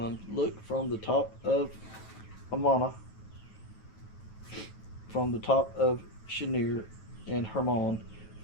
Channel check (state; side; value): late; right; 9.1 ms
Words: Look from the top of Amana, from the top of Shinir and Hermon,